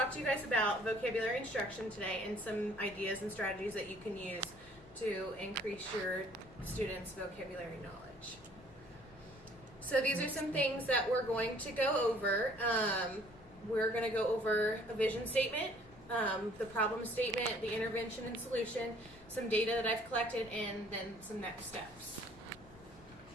to you guys about vocabulary instruction today and some ideas and strategies that you can use to increase your students' vocabulary knowledge. So these are some things that we're going to go over. We're going to go over a vision statement, the problem statement, the intervention and solution, some data that I've collected, and then some next steps.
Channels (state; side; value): noise; left; rumble, 22 dB below the sound